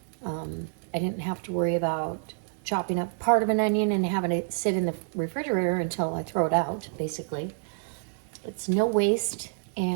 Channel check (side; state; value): left; silent; digital silence